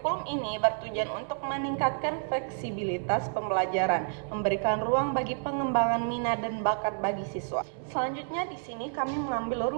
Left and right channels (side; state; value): left; silent; digital silence